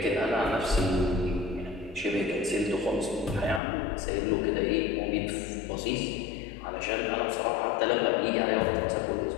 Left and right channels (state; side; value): drops out; right; at 3.6 s